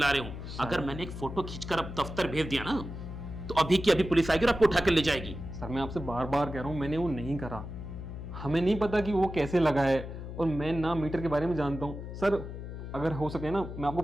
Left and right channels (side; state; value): left; noise; hum, 9 dB below the sound